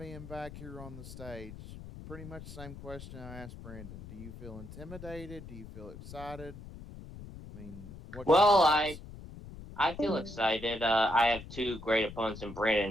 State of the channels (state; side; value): noise; left; rumble, 13 dB below the sound